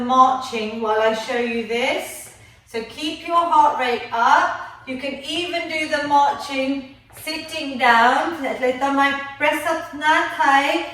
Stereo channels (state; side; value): identical; both; correlation 1.00